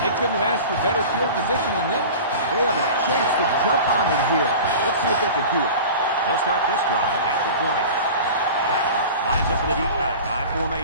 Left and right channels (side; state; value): both; inverted; correlation -0.36